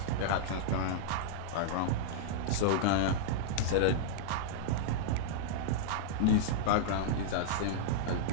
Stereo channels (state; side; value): different; both; correlation -0.01